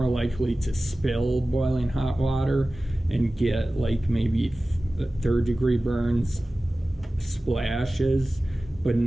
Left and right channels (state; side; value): normal; both; correlation 0.96